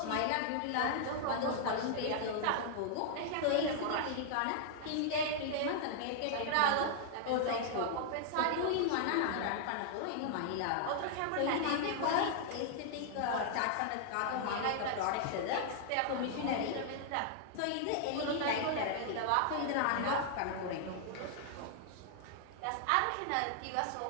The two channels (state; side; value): different; both; correlation -0.01